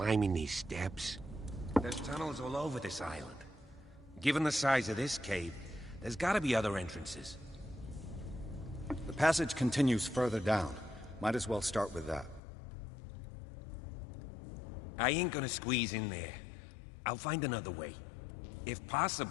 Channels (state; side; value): drops out; right; at 12.4 s